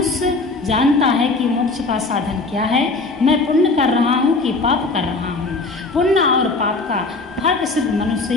जानता है कि मोक्ष का साधन क्या है। मैं पुण्य कर रहा हूँ कि पाप कर रहा हूँ। पुण्य और पाप का फर्क सिर्फ मनुष्य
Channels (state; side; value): quieter; right; 3.5 dB